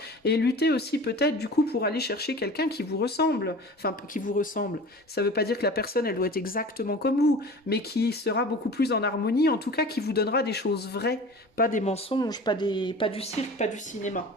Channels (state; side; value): normal; both; correlation 0.39